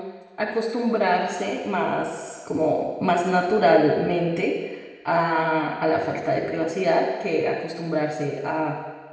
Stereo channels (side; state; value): both; identical; correlation 1.00